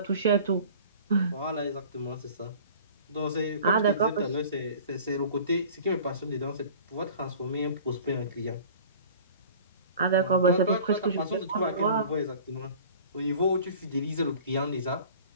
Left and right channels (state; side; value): inverted; both; correlation -0.45